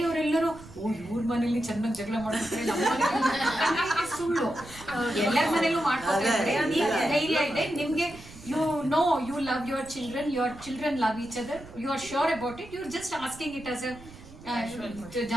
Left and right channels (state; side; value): noise; right; rumble, 18 dB below the sound